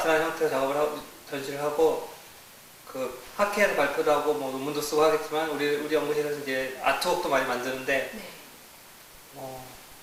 형태로 작업을 하고 전시를 하고, 그 학회에서 발표도 하고 뭐 논문도 쓰고 하겠지만 우리 연구실에서 이제 아트웍도 많이 만드는데, 네.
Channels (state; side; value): identical; both; correlation 1.00